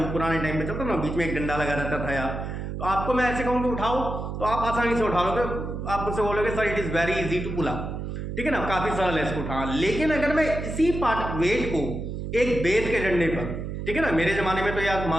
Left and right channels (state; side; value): noise; right; hum, 5 dB below the sound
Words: पुराने टाइम में चलता ना, बीच में एक डंडा लगा रहता था यार, तो आपको मैं ऐसे कहूँ कि उठाओ तो आप आसानी से उठा लोगे, आप मुझसे बोलोगे sir it is very easy to pull up, ठीक है ना, काफी सरल है इसको उठाना। लेकिन अगर मैं इसी पार्ट वेट को एक बेत के डंडे पर, ठीक है ना, मेरे जमाने में तो यार